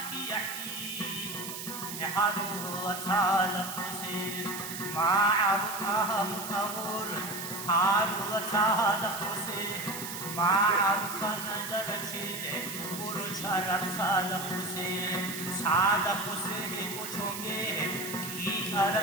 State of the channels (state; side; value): noise; right; hiss, 8 dB below the sound